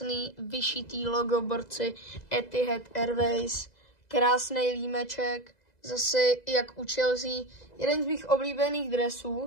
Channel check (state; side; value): late; right; 2.0 ms